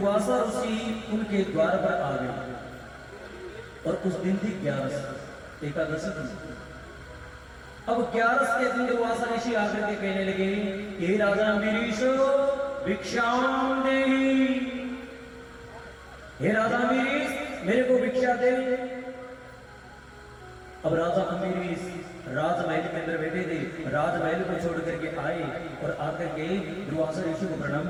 ऋषि उनके द्वार पर आ गए और उस दिन थी 11 एकादशी थी। अब 11 के दिन दुर्वासा ऋषि आकर के कहने लगे, हे राजा अंबरीश भिक्षाम देहि, हे राजा अंबरीश मेरे को भिक्षा दे। अब राजा अंबरीश राजमहल के अंदर बैठे थे, राजमहल को छोड़ करके आए और आकर के दुर्वासा ऋषि को प्रणाम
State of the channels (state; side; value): identical; both; correlation 1.00